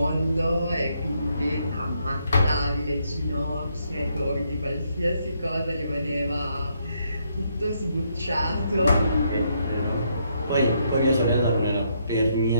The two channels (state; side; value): inverted; both; correlation -0.75